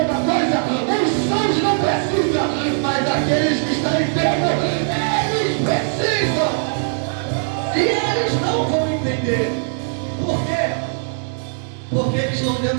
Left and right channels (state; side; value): silent; left; 57 dB below the other